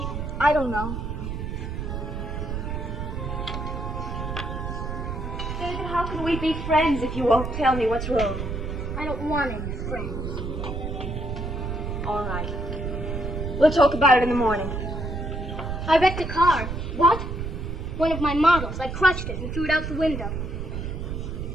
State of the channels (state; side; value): noise; right; rumble, 4 dB below the sound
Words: I don't know. David, how can we be friends if you won't tell me what's wrong? I don't want any friends. All right. We'll talk about it in the morning. I wrecked a car. What? One of my models. I crushed it and threw it out the window.